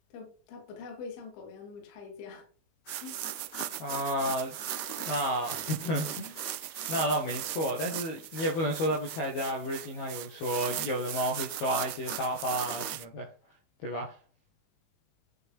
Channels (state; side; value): late; right; 19 ms